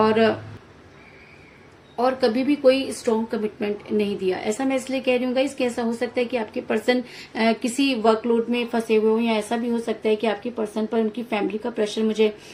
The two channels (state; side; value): identical; both; correlation 1.00